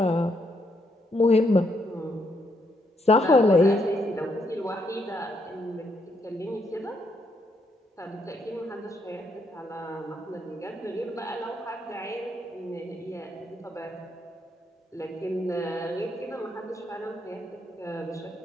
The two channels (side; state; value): both; normal; correlation 0.76